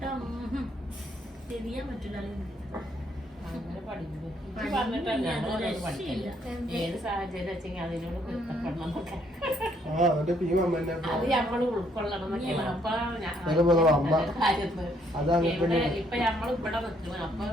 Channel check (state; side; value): normal; both; correlation 0.69